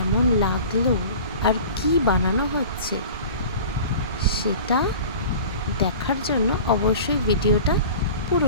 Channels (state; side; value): inverted; both; correlation -0.40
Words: লাগলো আর কি বানানো হচ্ছে সেটা দেখার জন্য অবশ্যই ভিডিওটা